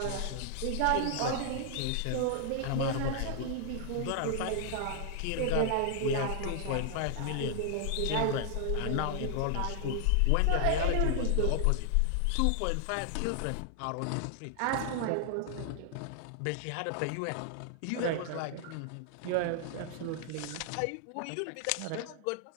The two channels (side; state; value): both; different; correlation 0.00